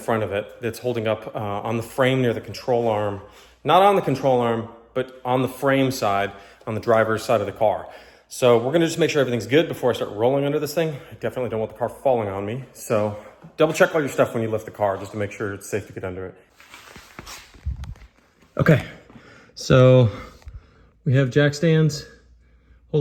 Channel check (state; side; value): identical; both; correlation 1.00